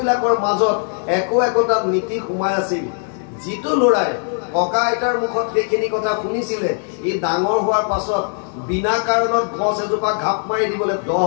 মাজত একোটা নীতি সোমাই আছিল। যিটো ল'ৰাই ককা আইতাৰ মুখত সেইখিনি কথা শুনিছিলে, ই ডাঙৰ হোৱাৰ পাছত বিনা কাৰণত গছ এজোপা ঘাপ মাৰি দিবলৈ 10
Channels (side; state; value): right; silent; 56 dB below the other